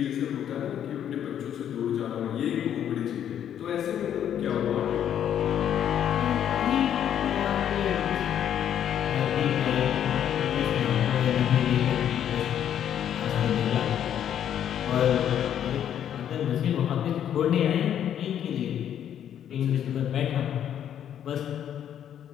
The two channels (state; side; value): quieter; right; 9.8 dB